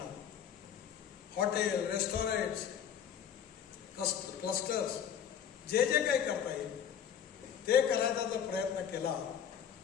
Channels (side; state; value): right; quieter; 8.7 dB